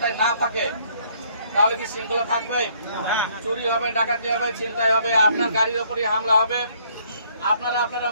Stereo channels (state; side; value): inverted; both; correlation -0.64